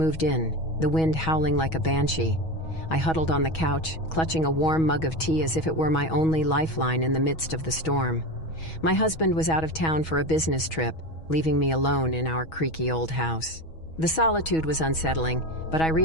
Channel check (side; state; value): right; late; 6.2 ms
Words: in, the wind howling like a banshee. I huddled on the couch, clutching a warm mug of tea as if it were my only lifeline in the midst of the storm. My husband was out of town for a business trip, leaving me alone in our creaky old house. The solitude was unsettling, but I